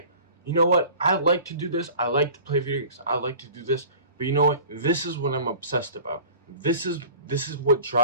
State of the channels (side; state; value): both; inverted; correlation -0.43